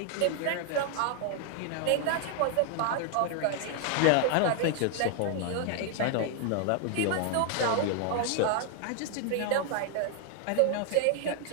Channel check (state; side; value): different; both; correlation 0.00